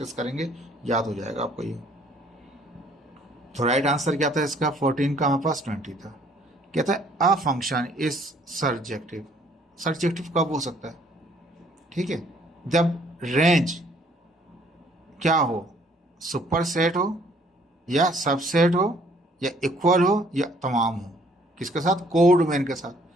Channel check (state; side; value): normal; both; correlation 0.61